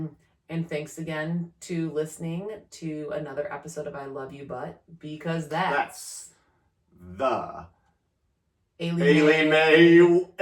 And thanks again to listening to another episode of I Love You But, because That's the Maley Way.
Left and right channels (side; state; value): both; identical; correlation 1.00